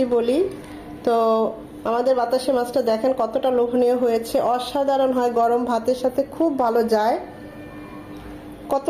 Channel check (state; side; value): identical; both; correlation 1.00